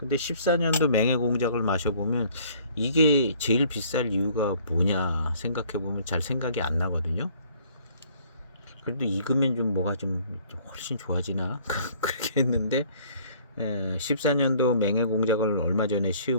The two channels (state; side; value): inverted; both; correlation -0.57